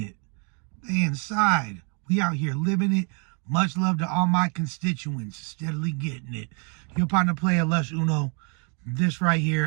They inside. We out here living it. Much love to all my constituents. Steadily getting it. Your partner player, Lush Uno. This right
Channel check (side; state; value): left; quieter; 37.8 dB